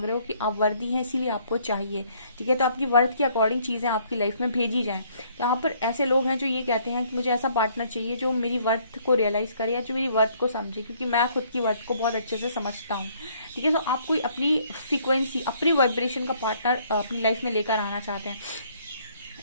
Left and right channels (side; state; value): both; inverted; correlation -0.64